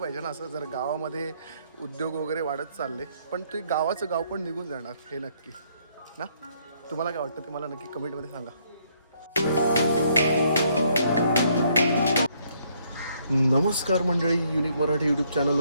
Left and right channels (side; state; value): both; inverted; correlation -0.69